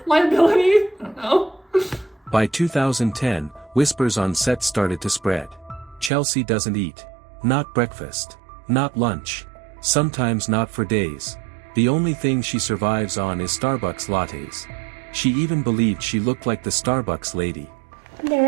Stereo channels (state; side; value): drops out; left; at 6.1 s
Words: Liability? I don't know. By 2010, whispers on set started to spread. Chelsea doesn't eat. Not breakfast. Not lunch. Sometimes not for days. The only thing she survives on is Starbucks lattes. She even believed she looked like the Starbucks lady.